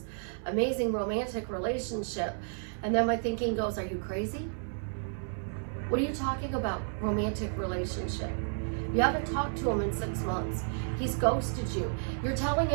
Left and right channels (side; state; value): left; silent; 57 dB below the other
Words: amazing romantic relationship. And then my thinking goes, are you crazy? What are you talking about? Romantic relationship. You haven't talked to him in 6 months. He's ghosted you. You're telling